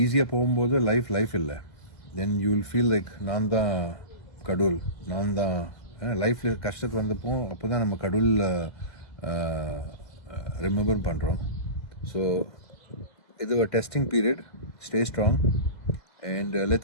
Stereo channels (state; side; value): late; right; 2.0 ms